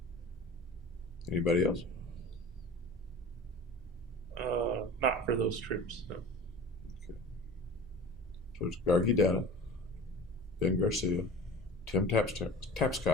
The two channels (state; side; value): normal; both; correlation 0.37